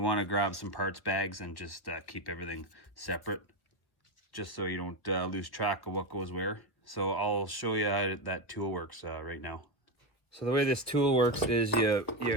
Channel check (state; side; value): late; right; 1.4 ms